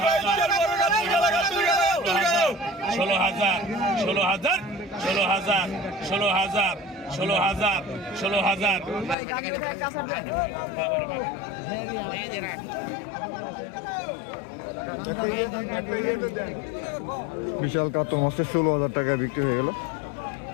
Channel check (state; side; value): drops out; right; at 9.2 s